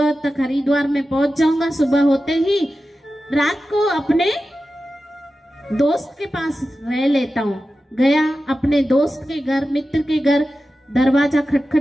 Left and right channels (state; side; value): normal; both; correlation 0.93